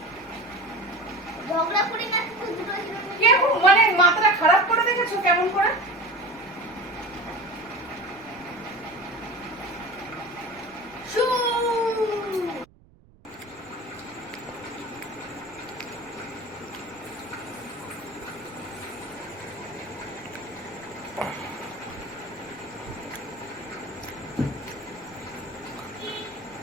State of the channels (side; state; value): right; noise; rumble, 27 dB below the sound